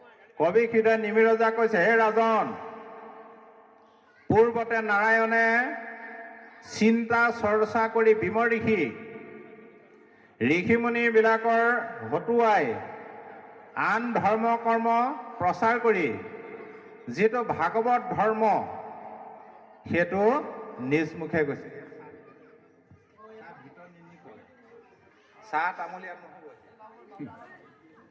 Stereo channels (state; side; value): identical; both; correlation 1.00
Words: কবি হৃদয় নিমিৰজা কৈছে, হে ৰাজন, পূৰ্বতে নাৰায়ণে চিন্তা চৰ্চা কৰি বিমৰ্ষি ঋষিমুনিবিলাকৰ হতুৱাই আন ধৰ্ম কৰ্ম প্ৰচাৰ কৰি যিটো ভাগৱত ধৰ্ম সেইটো নিজ মুখে গৈছে। চাহ তামোল ইয়াত নহ'ব